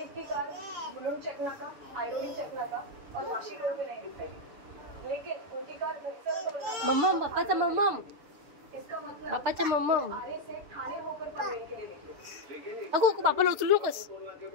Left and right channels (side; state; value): left; late; 6.4 ms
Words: की कार मुलुंड चेक नाका आयरोली चेक नाका और वाशी रोड पे नहीं दिखाई लेकिन उनकी कार मम्मम बापाचा मम्मम इसका मतलब बापाचा मम्मम आरे से थाने होकर पनवेल के लिए निकली अगो बापाला उचलू नकोस